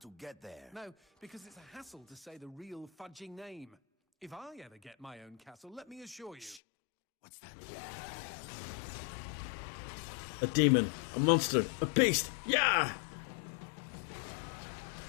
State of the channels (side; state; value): right; drops out; at 6.6 s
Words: get there. No, because it's a hassle to say the real fudging name. If I ever get my own castle, let me assure you... Shh. What's that? A demon, a monster, a beast, yeah!